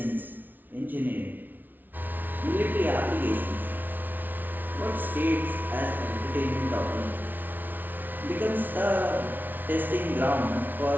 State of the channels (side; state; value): left; late; 0.086 ms